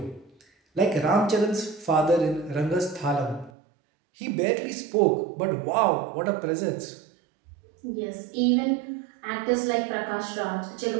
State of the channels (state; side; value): drops out; left; at 3.5 s